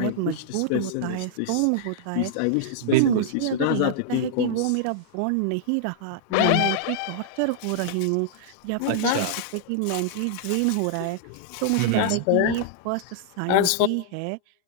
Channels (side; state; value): both; different; correlation -0.01